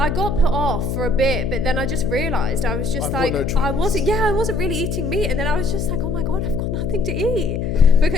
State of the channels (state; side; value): noise; left; hum, 2 dB below the sound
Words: got put off for a bit, but then I just realised I was just like, I wasn't really eating meat, and then I was just like, oh my god, I've got nothing to eat.